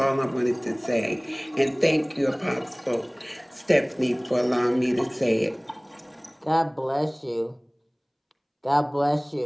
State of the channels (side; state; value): both; identical; correlation 1.00